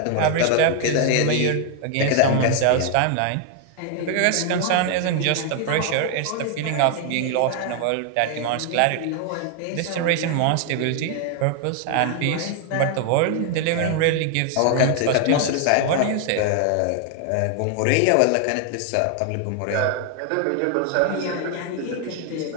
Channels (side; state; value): both; different; correlation 0.00